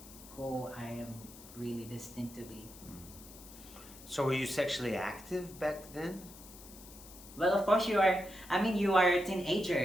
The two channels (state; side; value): noise; left; hiss, 18 dB below the sound